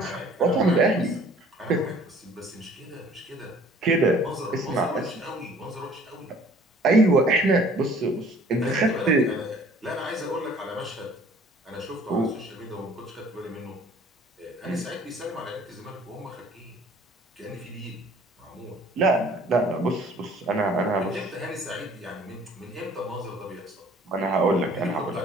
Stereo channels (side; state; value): both; normal; correlation 0.54